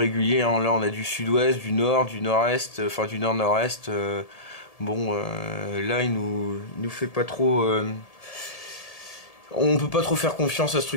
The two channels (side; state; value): right; late; 1.7 ms